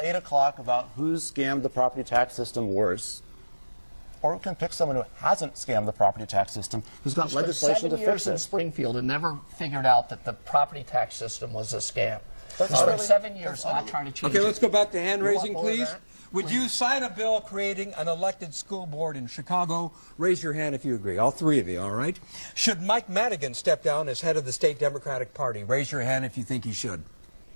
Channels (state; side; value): inverted; both; correlation -1.00